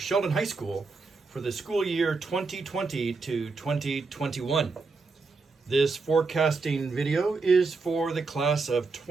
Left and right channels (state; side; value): quieter; left; 4.1 dB